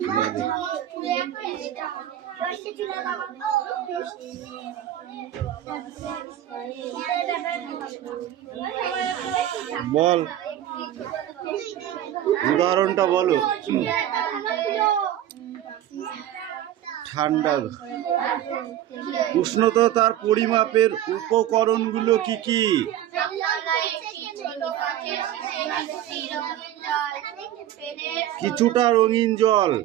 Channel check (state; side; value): quieter; left; 12.1 dB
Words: বল, উদাহরণটা বলো। ঠান্ডা। উষ্ণতার পরিমাপের উপকরণগুলো কি কি? কিছুটা রঙিন জল,